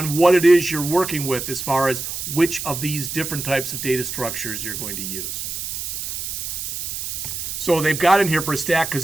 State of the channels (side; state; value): right; noise; hiss, 5 dB below the sound